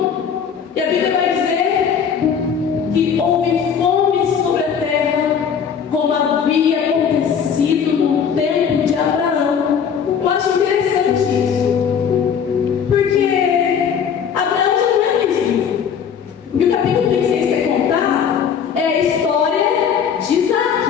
E a Bíblia vai dizer que houve fome sobre a terra, como havia acontecido no tempo de Abraão. Eu acho interessante isso, porque Abraão já não é mais vivo. O que o capítulo 26 quer contar é a história de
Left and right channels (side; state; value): right; quieter; 7.3 dB